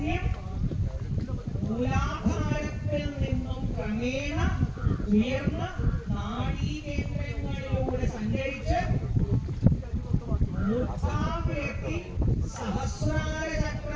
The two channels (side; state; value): both; identical; correlation 1.00